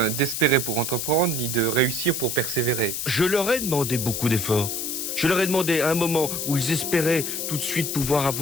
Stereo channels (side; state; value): left; noise; hiss, 3 dB below the sound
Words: d'espérer pour entreprendre, ni de réussir pour persévérer. Je leur ai demandé beaucoup d'efforts. Je leur ai demandé à un moment où ils espéraient tout de suite pouvoir